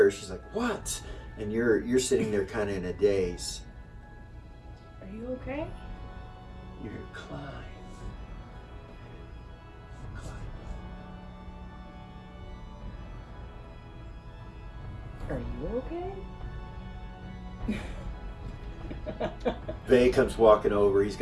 her, she's like, what? And you're sitting there kind of in a daze. Are you okay? You hear climb. Are you okay? Vay comes walking over. He's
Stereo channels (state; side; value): identical; both; correlation 1.00